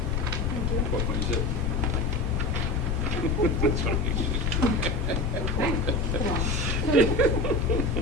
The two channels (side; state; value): right; quieter; 3.0 dB